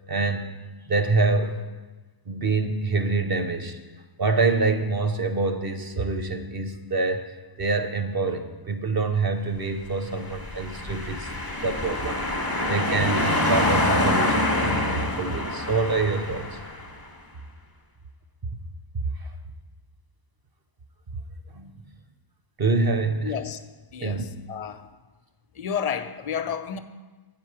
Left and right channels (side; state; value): left; late; 1.0 ms